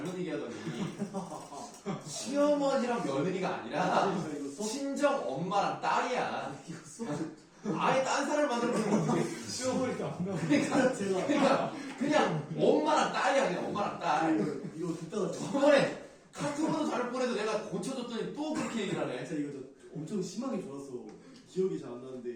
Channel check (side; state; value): both; identical; correlation 1.00